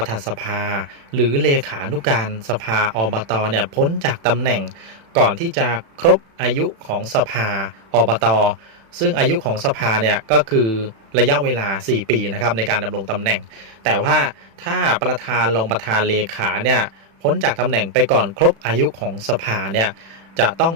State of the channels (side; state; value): left; late; 36 ms